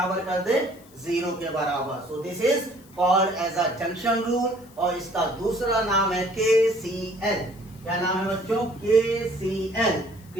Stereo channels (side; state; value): left; noise; hiss, 26 dB below the sound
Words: कर दे? जीरो के बराबर। So this is called as a junction rule, और इसका दूसरा नाम है KCL। क्या नाम है बच्चों? KCL,